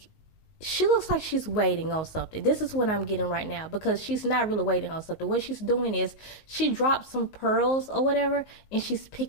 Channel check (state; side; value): late; right; 19 ms